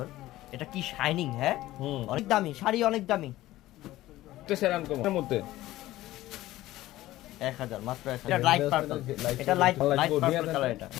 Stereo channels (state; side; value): quieter; right; 16.1 dB